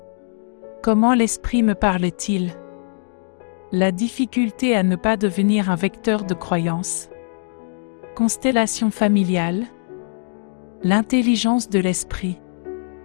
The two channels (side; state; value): right; silent; digital silence